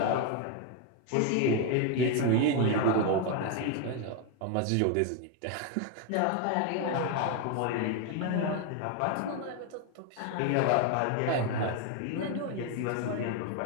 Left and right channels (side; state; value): both; different; correlation 0.01